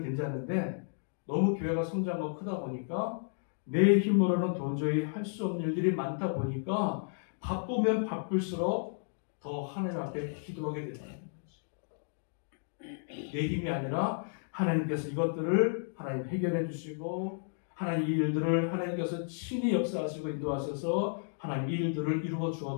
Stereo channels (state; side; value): silent; right; digital silence